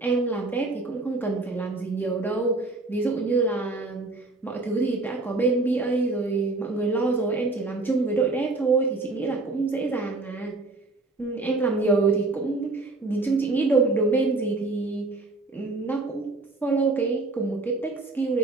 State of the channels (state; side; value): quieter; left; 3.3 dB